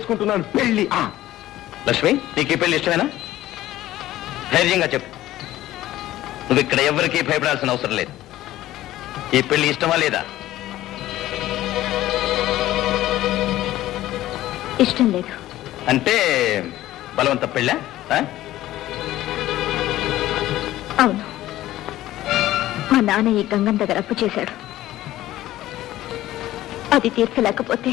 పెళ్లి. లక్ష్మి, నీకు ఈ పెళ్లి ఇష్టమేనా? ధైర్యంగా చెప్పు. నువ్వు ఇక్కడ ఎవరికీ భయపడాల్సిన అవసరం లేదు. ఈ పెళ్లి ఇష్టమా లేదా? ఇష్టం లేదు. అంటే బలవంత పెళ్ళా? అవును, మా నాన్న ఈ గంగన్ దగ్గర అప్పు చేశాడు. అది తీర్చలేకపోతే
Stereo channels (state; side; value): quieter; right; 14.9 dB